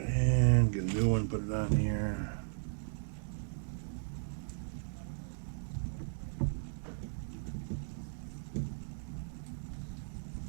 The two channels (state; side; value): silent; left; 54 dB below the other